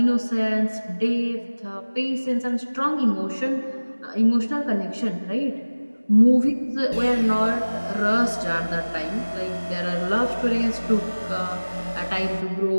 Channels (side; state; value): both; inverted; correlation -1.00